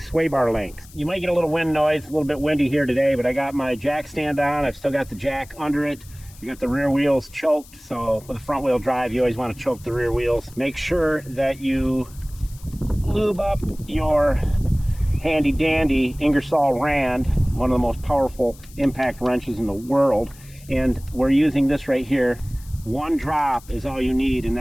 bar links. You might get a little wind noise, a little bit windy here today, but I got my jack stand on. I've still got the jack under it. You got the rear wheels choked, so with a front wheel drive, you always want to choke the rear wheels. Make sure that you lube up your handy dandy Ingersoll Rand, one of the most powerful impact wrenches in the world, and we're using this right here. One drop is all you need in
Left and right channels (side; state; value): left; noise; hiss, 23 dB below the sound